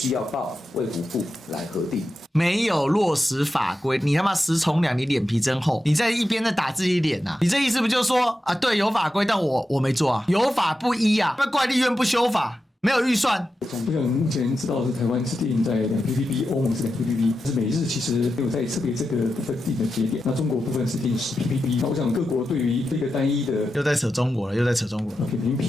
要報衛福部來核定。沒有落實法規，你他媽食蟲兩，你臉皮真厚！你在一邊在打自己臉啊！你這意思不就是說啊，對，有法規，但我沒做啊，有法不依啊，那怪立院不修法，沒有預算。我想目前知道的是台灣是定在2 ppb， 歐盟是2 ppb， 但是美日其實沒有在特別這個部分定的節點。那中國部分是定10 ppb。那我想各國對於這個單一的又在扯中國了，又在扯中國了。扁平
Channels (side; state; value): both; normal; correlation 0.90